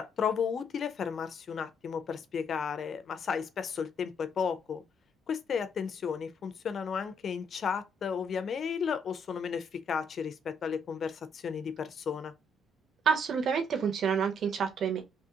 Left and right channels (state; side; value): normal; both; correlation 0.70